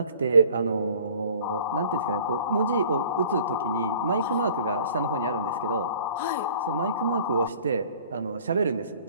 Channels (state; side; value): inverted; both; correlation -0.48